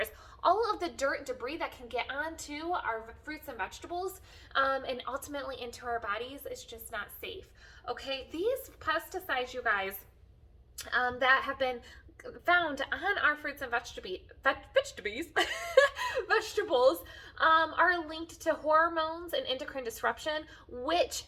All of the dirt and debris that can get onto our fruits and vegetables and ultimately into our bodies is just not safe. Okay, these pesticides, you guys, that have been found on our fruits and vegetables are linked to hormones and endocrine disruption, which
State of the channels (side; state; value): both; identical; correlation 1.00